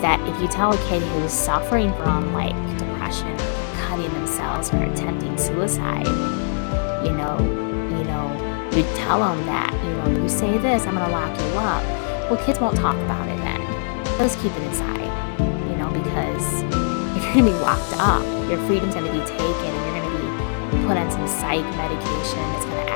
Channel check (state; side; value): silent; right; digital silence